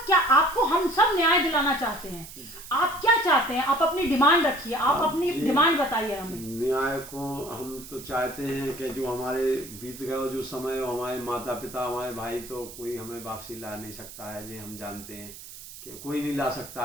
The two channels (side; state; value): right; noise; hiss, 15 dB below the sound